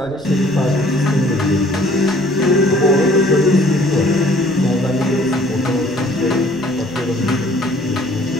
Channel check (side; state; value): right; noise; rumble, 21 dB below the sound